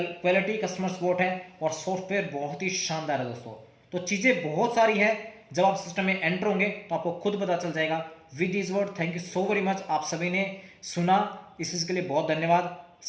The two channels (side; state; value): both; identical; correlation 1.00